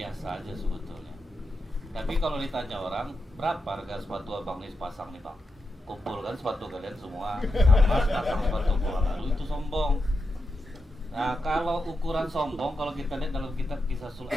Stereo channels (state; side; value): normal; both; correlation 0.87